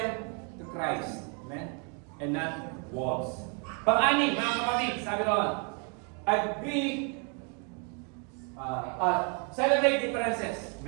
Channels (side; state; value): left; quieter; 38.0 dB